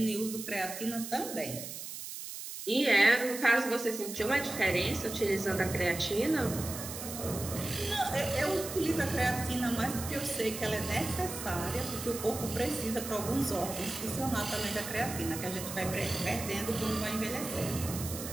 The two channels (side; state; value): right; noise; hiss, 8 dB below the sound